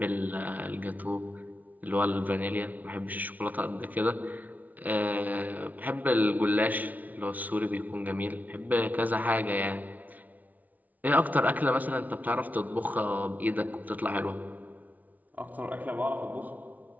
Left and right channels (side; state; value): left; late; 0.076 ms